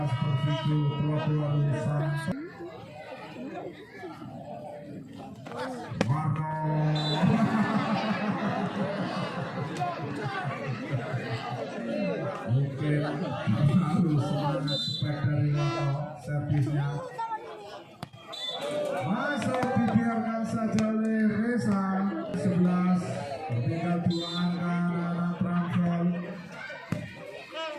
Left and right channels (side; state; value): both; identical; correlation 1.00